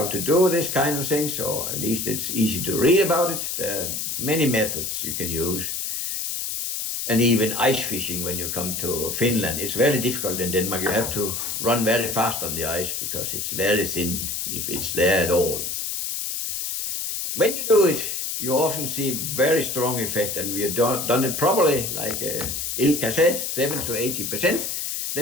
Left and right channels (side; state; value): left; noise; hiss, 3 dB below the sound